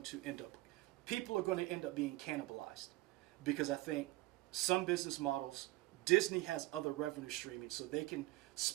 to end up, people are going to end up being cannibalized. Because I think some business models, Disney has other revenue streaming, so they can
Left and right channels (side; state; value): left; quieter; 18.8 dB